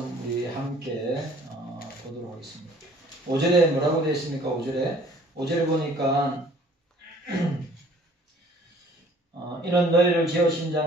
우리 함께 보도록 하겠습니다. 5절에 뭐라고 되어 있습니까? 5절에 보니까 이는 너희를 지으신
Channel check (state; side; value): normal; both; correlation 0.54